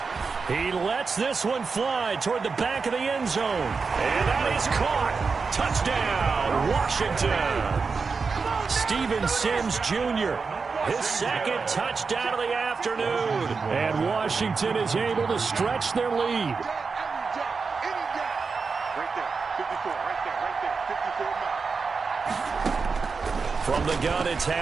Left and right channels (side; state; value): left; quieter; 4.9 dB